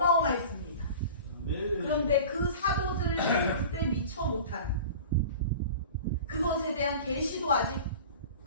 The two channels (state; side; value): inverted; both; correlation -0.38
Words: 그런데 그 사도들 그때 미처 못한 그것에 대한 계시도 아직